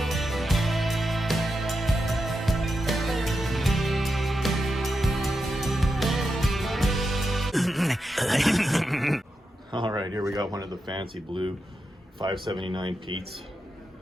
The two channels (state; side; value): normal; both; correlation 0.87